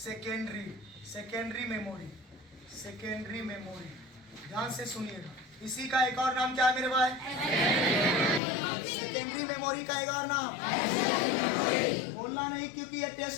मेमोरी, सेकेंडरी मेमोरी, ध्यान से सुनिएगा। इसी का एक और नाम क्या है मेरे भाई? सेकेंडरी मेमोरी का एक और नाम बोलना नहीं क्योंकि ये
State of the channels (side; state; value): right; drops out; at 8.4 s